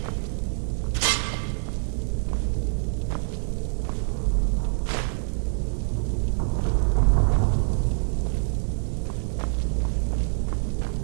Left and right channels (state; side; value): silent; left; digital silence